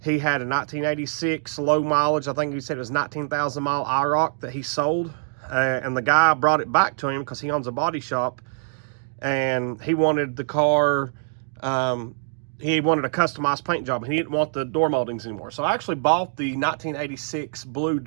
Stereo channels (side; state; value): left; silent; digital silence